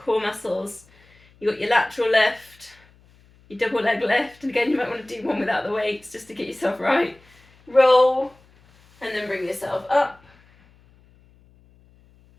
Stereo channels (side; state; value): left; noise; hum, 30 dB below the sound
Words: muscles. You got your lateral lift, your double leg lift, and again you might want to do one without the weights just to get yourself right. Roll, and then bring yourself up.